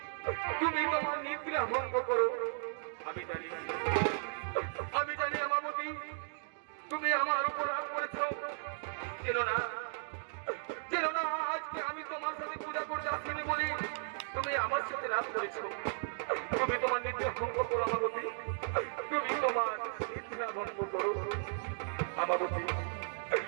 তুমি তোমার নিদ্রা ভঙ্গ করো। আমি জানি আমাবতী তুমি আমার উপর রাগ করেছো। চেনো না আজকে আমি তোমার সাথে পূজা করতে আসিনি বলি তুমি আমার সাথে রাগ করেছো। তুমি তোমার নিদ্রা ভঙ্গ করো আমাবতী, তুমি তোমার নিদ্রা ভঙ্গ করো আমাবতী।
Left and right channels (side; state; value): left; silent; digital silence